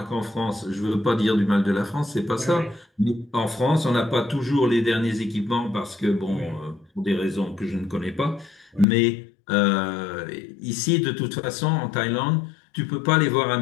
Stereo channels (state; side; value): drops out; right; at 8.8 s